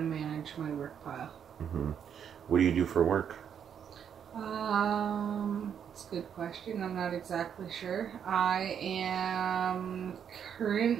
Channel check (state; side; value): quieter; left; 8.2 dB